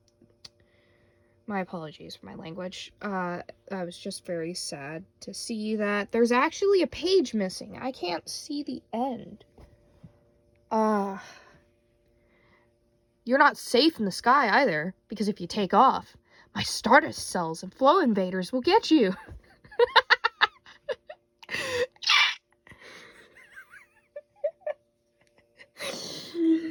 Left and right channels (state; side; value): identical; both; correlation 1.00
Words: My apologies for my language. I was just very sad to see that there's actually a page missing. I can't see the end. You're not safe in the sky either, because if you take off, my Stardust cells and flow invaders will get you.